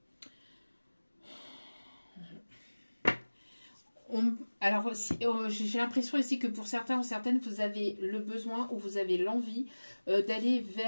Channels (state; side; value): inverted; both; correlation -1.00